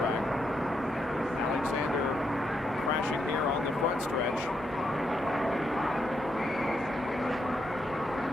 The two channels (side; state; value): both; normal; correlation 0.80